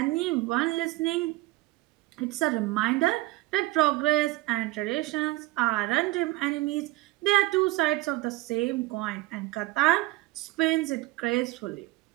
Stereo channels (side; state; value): left; quieter; 19.4 dB